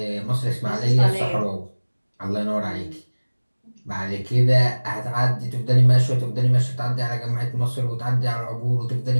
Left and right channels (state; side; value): inverted; both; correlation -1.00